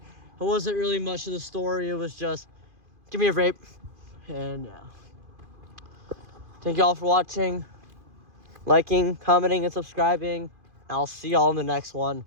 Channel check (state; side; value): late; left; 2.5 ms